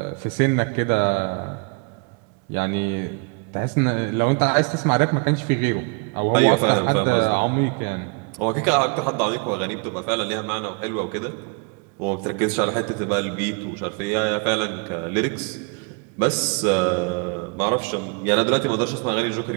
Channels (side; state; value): left; quieter; 34.3 dB